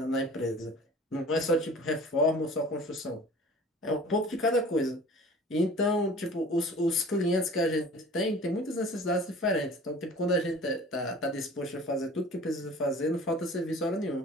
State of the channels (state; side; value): normal; both; correlation 0.44